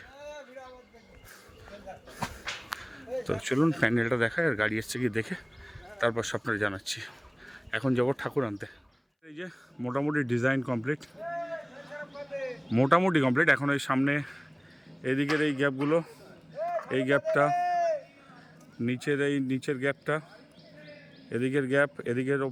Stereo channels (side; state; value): both; identical; correlation 1.00